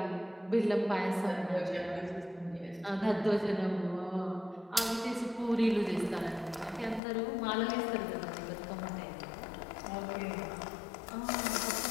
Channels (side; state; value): right; drops out; at 7.0 s